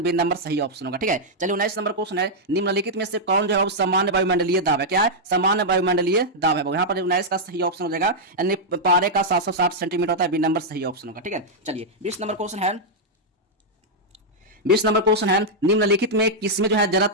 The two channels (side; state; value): both; normal; correlation -0.04